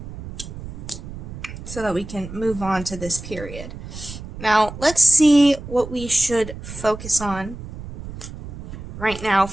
so that we can move on to this period. Now, let's see what we should focus on right now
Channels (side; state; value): right; noise; rumble, 12 dB below the sound